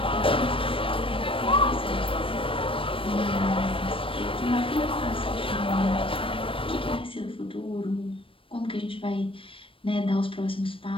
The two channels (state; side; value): late; right; 0.26 ms